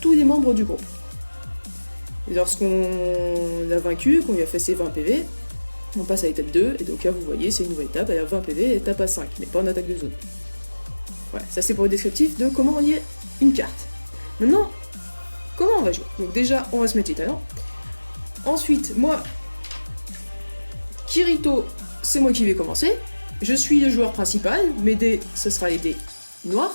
les membres du groupe. Et lorsqu'on l'a vaincu, qu'on lui a fait ses 20 PV, on passe à l'étape 2, et donc là vous voyez, c'est une nouvelle étape, elle a 20 PV, et étape à 5, mais pas en attaque de zone. Voilà, ça c'est pour le descriptif de comment lier une carte. Maintenant, comment on va jouer? Donc déjà, on va se mettre les talents. Ensuite, moi, Kirito, c'est moi qui vais commencer. Je suis le joueur principal, mes dés, ce sera les dés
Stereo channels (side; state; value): both; inverted; correlation -1.00